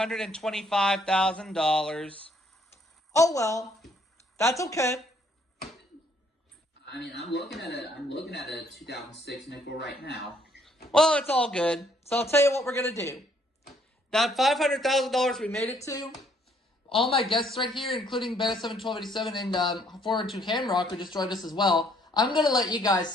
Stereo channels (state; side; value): normal; both; correlation 0.66